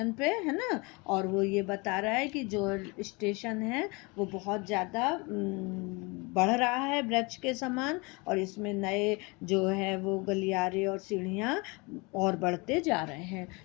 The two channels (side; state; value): right; quieter; 27.6 dB